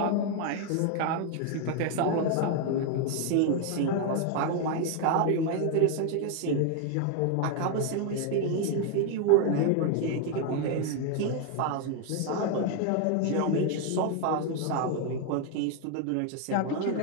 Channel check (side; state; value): both; different; correlation 0.01